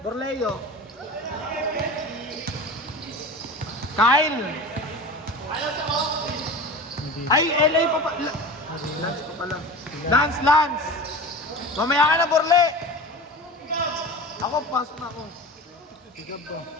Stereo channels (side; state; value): both; normal; correlation 0.33